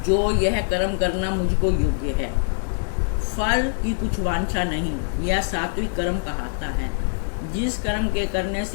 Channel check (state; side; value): silent; right; digital silence